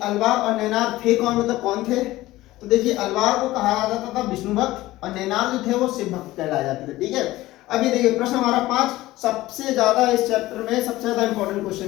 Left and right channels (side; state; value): right; quieter; 17.2 dB